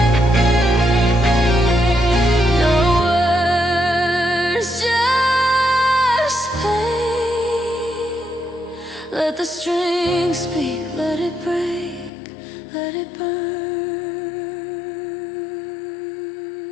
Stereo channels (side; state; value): right; drops out; at 12.1 s